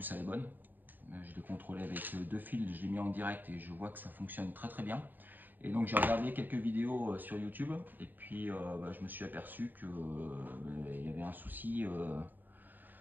elle est bonne. Je l'ai contrôlé avec 2 fils, je l'ai mis en direct et je vois que ça fonctionne très très bien. Et donc j'ai regardé quelques vidéos sur YouTube et puis je me suis aperçu que il y avait un souci,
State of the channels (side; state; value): left; late; 0.089 ms